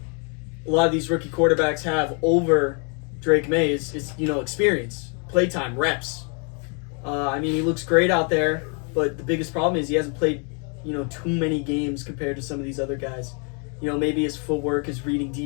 a lot of these rookie quarterbacks have over Drake Maye is experience, playtime, reps. He looks great out there, but the biggest problem is he hasn't played, too many games compared to some of these other guys. Maybe his footwork, his reading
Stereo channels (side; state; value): right; quieter; 38.0 dB